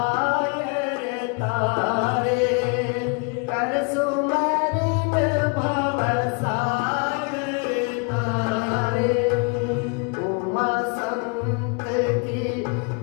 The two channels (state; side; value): quieter; right; 34.4 dB